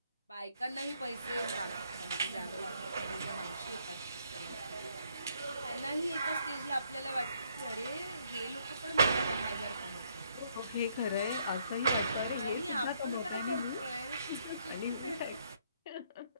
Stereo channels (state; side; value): inverted; both; correlation -0.70